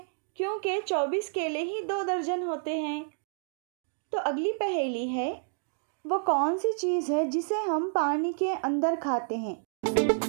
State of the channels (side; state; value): left; silent; digital silence